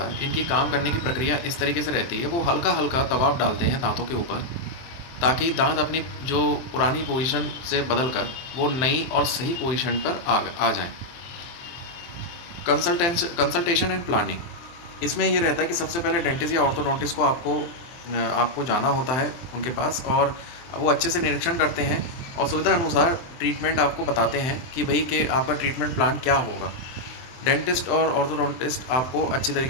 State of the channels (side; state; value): right; late; 23 ms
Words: इनकी काम करने की प्रक्रिया इस तरीके से रहती है। वो हल्का हल्का दबाव डालते हैं दांतों के ऊपर, ताकि दांत अपनी जो पुरानी पोजीशन से बदल कर वो नई और सही पोजीशन पर आ जाएं। कंसल्टेशन एंड प्लानिंग, इसमें ये रहता है कि सबसे पहले डेंटिस्ट या ऑर्थोडोंटिस्ट को आपको जाना होता है उनके पास, और वो अच्छे से निरीक्षण करते हैं और सुविधा अनुसार ट्रीटमेंट आपको बताते हैं कि भाई कि आपका ट्रीटमेंट प्लान क्या होगा। डेंटिस्ट और ऑर्थोडोंटिस्ट आपको अच्छी